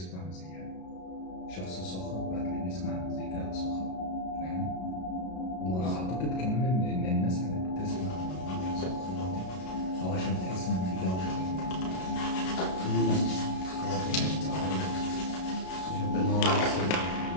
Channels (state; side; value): late; right; 32 ms